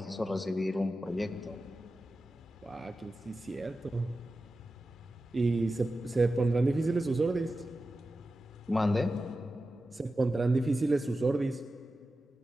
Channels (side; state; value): both; normal; correlation 0.93